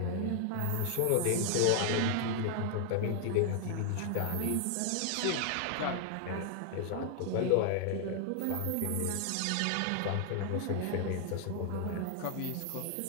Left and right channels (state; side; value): different; both; correlation 0.00